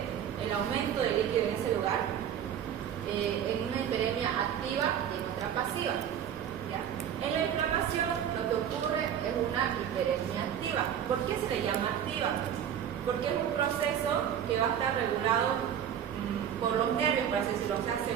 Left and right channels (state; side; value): quieter; left; 9.4 dB